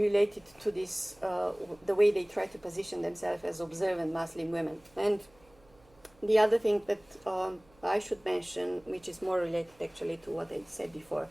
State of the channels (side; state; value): right; noise; hum, 30 dB below the sound